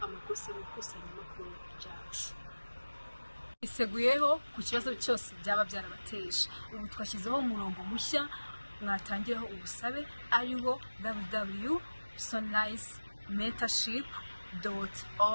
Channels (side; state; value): both; inverted; correlation -1.00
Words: amakosa mu ikusanyamakuru ryacu. Iseguyeho ku kibazo cyose byaba byarabateje ubu twashyizeho umurongo mushya mwatangiraho ubusabe ariho